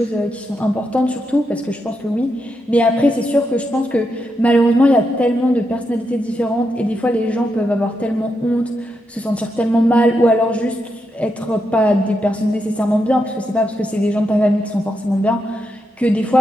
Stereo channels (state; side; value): normal; both; correlation 0.83